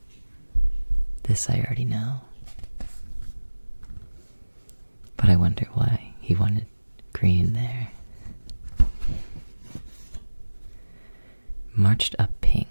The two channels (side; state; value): both; inverted; correlation -1.00